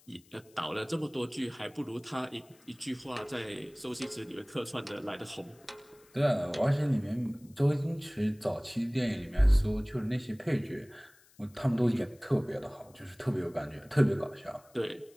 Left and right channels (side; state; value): left; noise; hiss, 29 dB below the sound